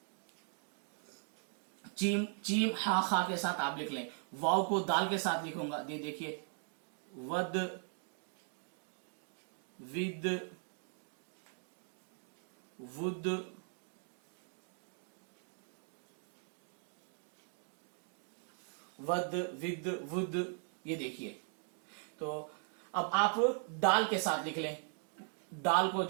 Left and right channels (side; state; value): left; silent; 52 dB below the other